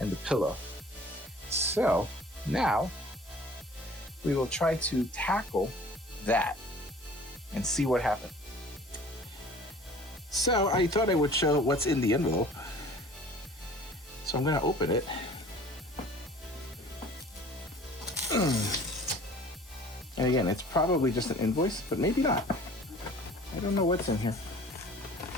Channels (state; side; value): normal; both; correlation 0.48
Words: pillow. So now we will try to tackle that and see what happens. So I thought I would show what's in the envelope. So I'm going to open it. And again, it's probably just an invoice, but maybe not. I don't know what's in here.